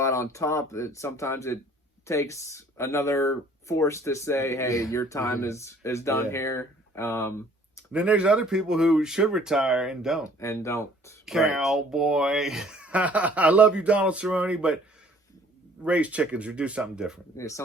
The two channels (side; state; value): both; normal; correlation 0.56